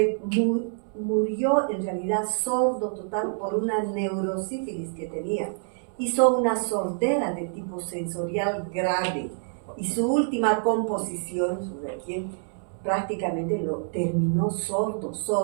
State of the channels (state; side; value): silent; left; 60 dB below the other